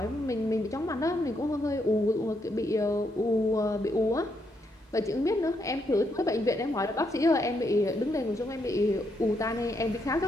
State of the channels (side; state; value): both; normal; correlation 0.77